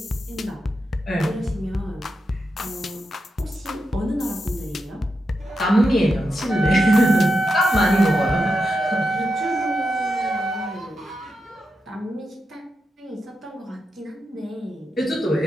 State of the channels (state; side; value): normal; both; correlation 0.87